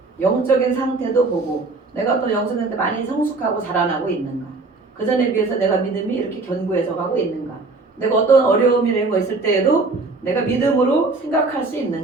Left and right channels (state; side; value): quieter; left; 3.6 dB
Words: 영적인 상태도 보고 내가 또 영적인 상태 많이 성숙하고 자라나고 있는가. 그 전에 비해서 내가 믿음이 이렇게 견고해져 가고 있는가. 내가 어떤 어려움이 이런 거 있을 때에도 내가 믿음으로 생각할 수